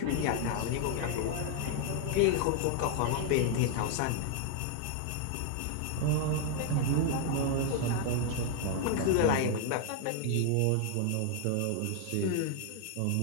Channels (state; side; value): different; both; correlation 0.00